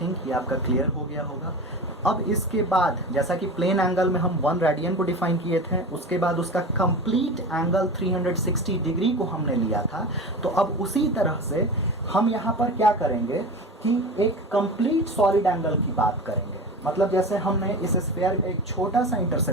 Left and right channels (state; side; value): normal; both; correlation 0.30